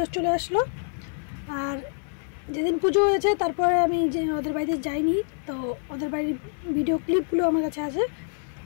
চলে আসলো। আর যেদিন পুজো হয়েছে তারপরে আমি যে ওদের বাড়িতে যাইনি, তো ওদের বাড়ির ভিডিও ক্লিপগুলো আমার কাছে আছে,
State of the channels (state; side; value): silent; right; 55 dB below the other